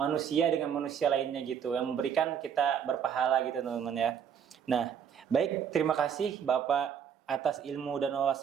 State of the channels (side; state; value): left; quieter; 8.0 dB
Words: dengan manusia lainnya gitu, yang memberikan kita berpahala gitu teman-teman ya. Nah, baik, terima kasih Bapak atas ilmu dan